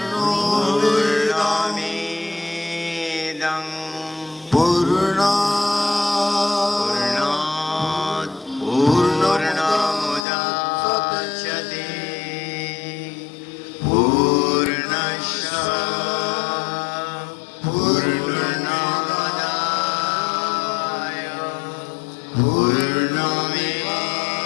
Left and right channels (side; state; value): right; drops out; at 10.2 s